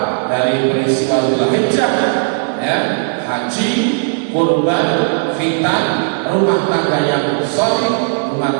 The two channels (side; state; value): left; silent; digital silence